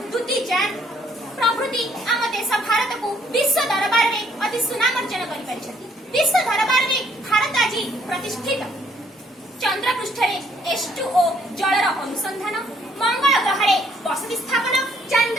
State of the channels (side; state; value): both; normal; correlation 0.66